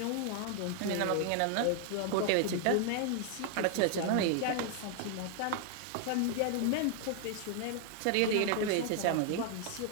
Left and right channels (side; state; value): both; different; correlation 0.00